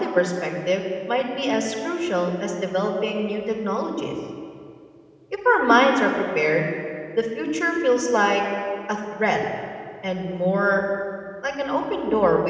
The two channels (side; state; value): both; identical; correlation 1.00